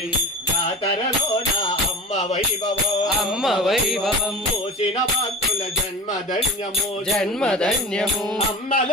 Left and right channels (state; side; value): normal; both; correlation 0.33